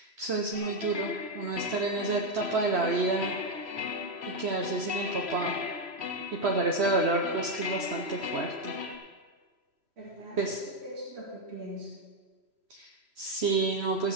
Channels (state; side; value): late; left; 3.1 ms